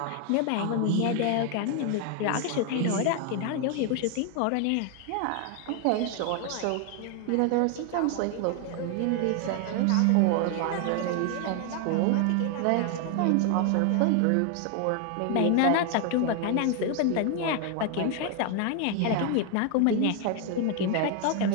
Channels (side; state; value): both; different; correlation 0.00